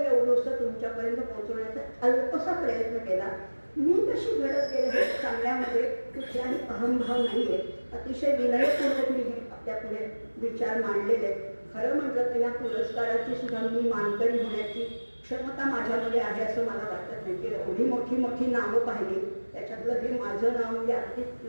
तुमच्यापर्यंत पोहोचवण्याचा अल्पसा प्रयत्न केला. मी कशी घडत गेले हे सांगण्यामध्ये कुठलाही अहंभाव नाही आहे. अतिशय विनयपूर्वक मी हे आपल्या पुढे विचार मांडलेले. खरं म्हटलं तर या पुरस्काराची सुद्धा मी मानकरी होण्याची क्षमता माझ्यामध्ये आहे असं मला वाटत नाही. की एवढी मोठी मोठी नावं पाहिली, त्याच्यातलं हे माझं नाव म्हणजे अगदी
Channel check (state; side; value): inverted; both; correlation -1.00